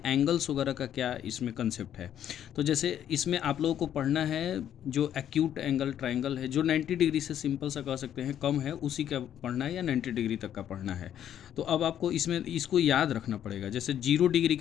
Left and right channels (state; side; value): quieter; right; 10.3 dB